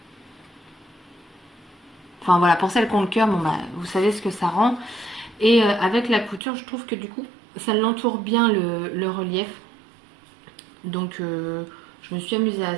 Enfin, voilà, pour celles qui ont le cœur, bon, vous savez ce que ça rend. Et avec la couture, je trouve que du coup, ça l'entoure bien le relief. Donc, je me suis amusée à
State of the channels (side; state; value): left; drops out; at 6.4 s